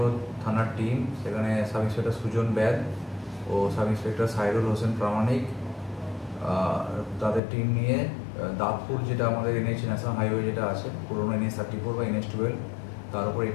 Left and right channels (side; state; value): right; drops out; at 7.4 s